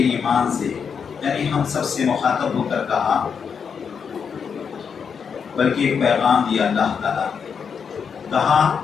سے، یعنی ہم سب سے مخاطب ہو کر کہا، بلکہ ایک پیغام دیا اللہ تعالیٰ نے. کہا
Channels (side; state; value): right; quieter; 6.5 dB